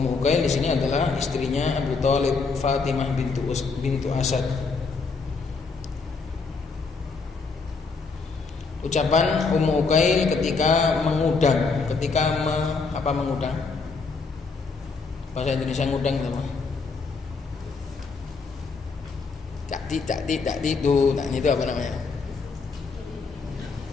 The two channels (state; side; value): quieter; right; 4.5 dB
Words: Uqail di sini adalah istrinya Abu Thalib, Fatimah bintu Asad. Ucapan Ummu Uqail ketika mengudang, mengudang? Bahasa Indonesia ngudang itu apa? Tak itu apa namanya?